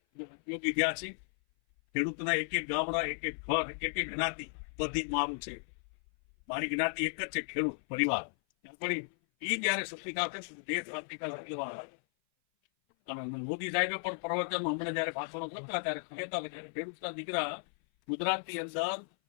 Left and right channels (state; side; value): silent; right; 55 dB below the other